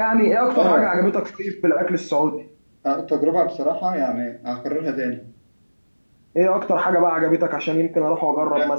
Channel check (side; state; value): both; inverted; correlation -1.00